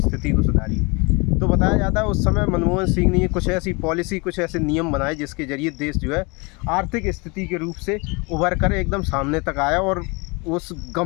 को सुधारिए। तो बताया जाता है उस समय मनमोहन सिंह ने कुछ ऐसी पॉलिसी, कुछ ऐसे नियम बनाए जिसके जरिए देश जो है आर्थिक स्थिति के रूप से उभर कर एकदम सामने तक आया और उस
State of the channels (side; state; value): right; quieter; 28.7 dB